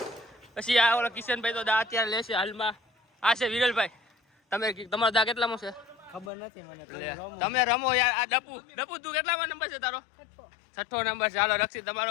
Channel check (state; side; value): drops out; right; at 6.3 s